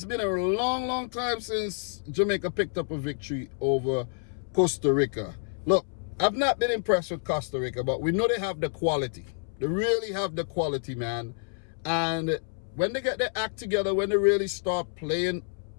been a long time since Jamaica picked up a victory over Costa Rica. Look, I've not been impressed with Costa Rica, but we know they have the quality. They really have the quality, man. And when they get their act together, when they really start playing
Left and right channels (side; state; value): right; silent; 59 dB below the other